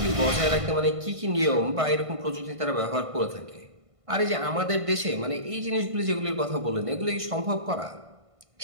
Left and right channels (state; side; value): late; left; 1.5 ms